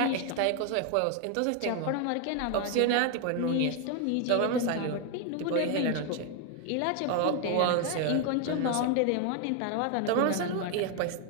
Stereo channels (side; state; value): both; different; correlation 0.01